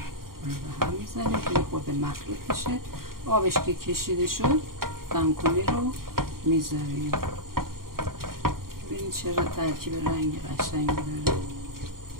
به هم میزنیم که خود مخلوط بشه. آبش که کشیده شد دمکنی رو میذاریم. ببینید چرا ترکیب رنگ قشنگی داره.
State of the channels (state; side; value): late; left; 0.92 ms